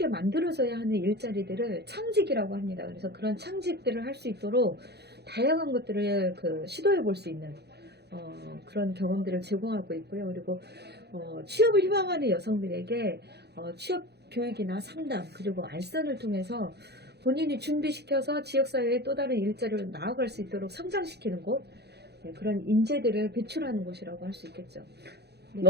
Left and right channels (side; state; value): left; late; 0.48 ms